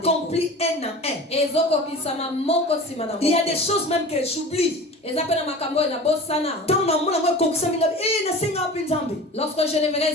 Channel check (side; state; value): both; normal; correlation 0.37